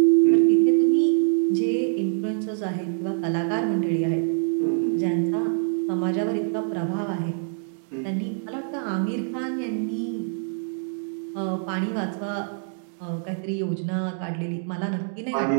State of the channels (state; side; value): silent; left; digital silence